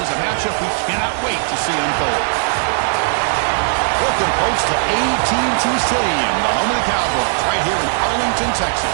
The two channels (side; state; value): left; silent; digital silence